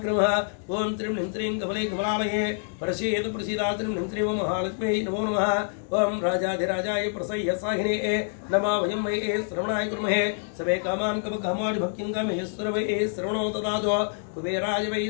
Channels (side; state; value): right; silent; 59 dB below the other